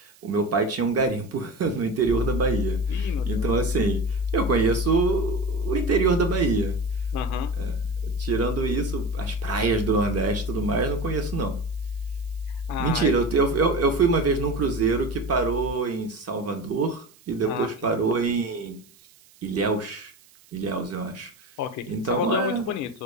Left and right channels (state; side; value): noise; right; hiss, 28 dB below the sound